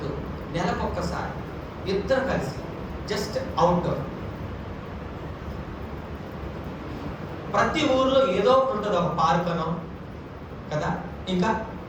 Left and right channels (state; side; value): identical; both; correlation 1.00